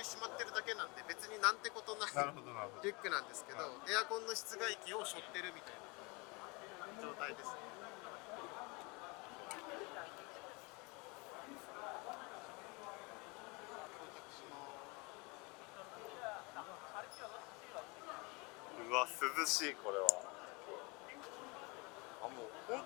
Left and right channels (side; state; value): right; quieter; 28.2 dB